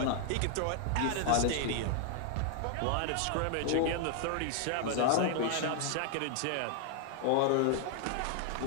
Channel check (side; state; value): both; different; correlation 0.00